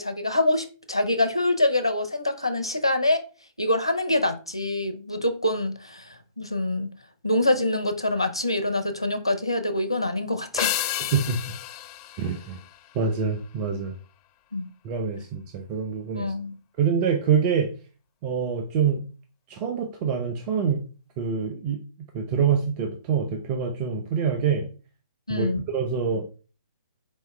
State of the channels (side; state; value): both; inverted; correlation -0.52